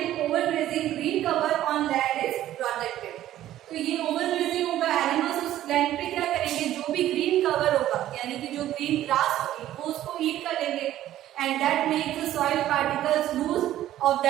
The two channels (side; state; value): left; quieter; 13.2 dB